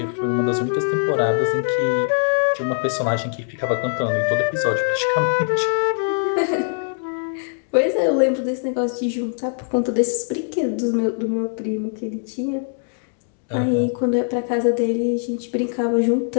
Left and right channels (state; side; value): silent; right; 64 dB below the other